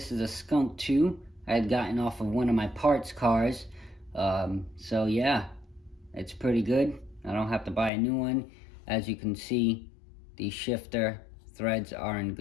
is a Skunk 2 I had gotten off of one of my parts cars. So yeah, it's pretty good. I don't have to buy a new one. As you can see, the shifter threads are in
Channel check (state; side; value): drops out; right; at 7.9 s